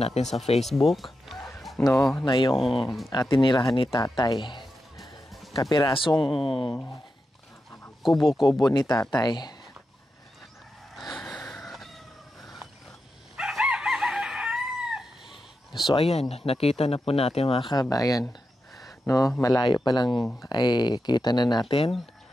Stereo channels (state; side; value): normal; both; correlation 0.89